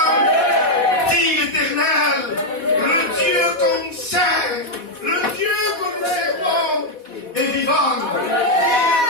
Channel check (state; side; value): late; right; 4.1 ms